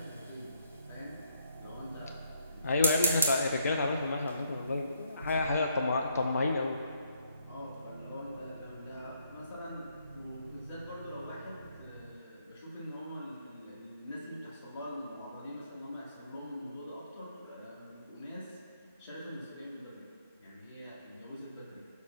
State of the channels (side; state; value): both; inverted; correlation -0.70